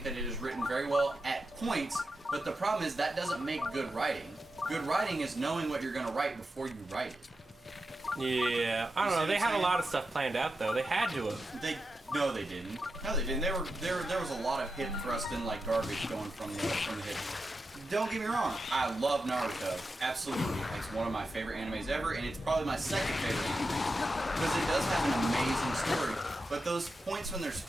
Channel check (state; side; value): normal; both; correlation 0.89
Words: that it is written very well at points, but the problem is that doesn't make good writing. Good writing is knowing what you're going to write before you write it. Yeah, I don't know. They had a lot of stuff planned out though. They had to have. No, they didn't. No, they didn't. There was a lot of hip thrust in like garbage going from the hip. Don't get me wrong, I love Naruto. Absolutely. It's one of my favorite animes ever, and it's probably my second favorite anime. Because it does have an amazing story. But those points when there's